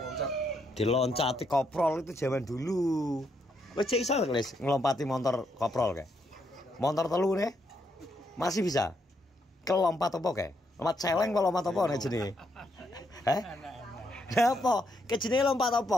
Diloncati koprol itu zaman dulu. Wis cek iso Belis ngelompati motor koprol kae. Motor telu nih. Masih bisa. Kelompat apa kae? Lompat celeng apa lompat apa nek jenenge? Heh? Apa? Ke jenenge lompat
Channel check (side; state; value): both; normal; correlation 0.77